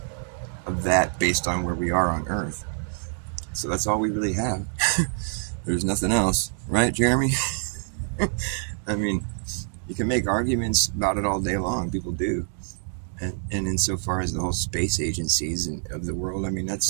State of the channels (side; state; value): left; silent; digital silence